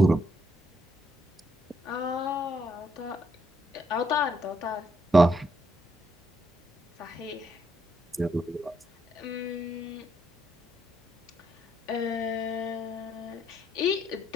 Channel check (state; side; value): normal; both; correlation 0.75